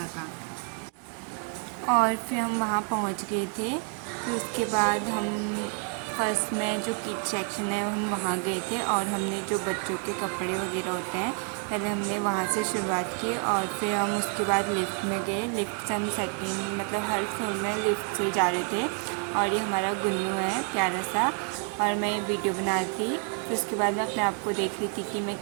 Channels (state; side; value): quieter; left; 36.4 dB